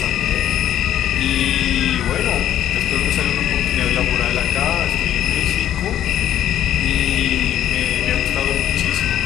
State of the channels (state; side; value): quieter; right; 11.1 dB